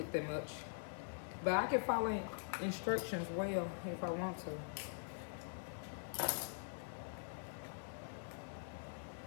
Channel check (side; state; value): right; silent; digital silence